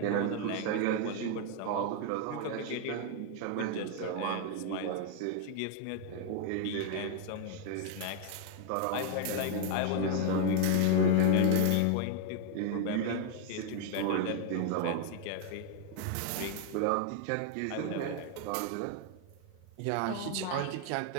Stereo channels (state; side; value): different; both; correlation 0.00